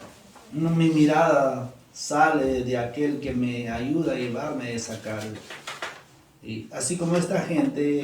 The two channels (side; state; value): both; identical; correlation 1.00